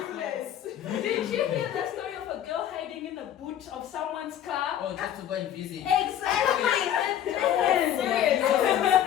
Did you hear the story of a girl hiding in the boot of someone's car? Oh, just to go and visit. Exactly.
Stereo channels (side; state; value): right; quieter; 10.7 dB